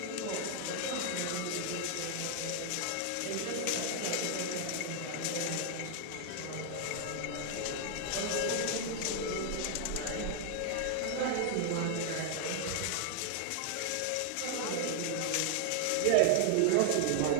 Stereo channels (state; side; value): different; both; correlation 0.00